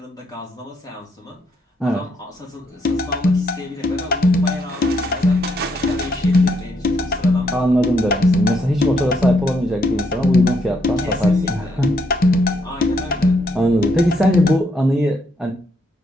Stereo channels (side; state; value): both; normal; correlation 0.75